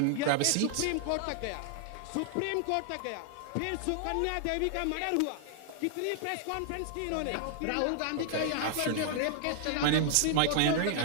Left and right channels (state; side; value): different; both; correlation -0.01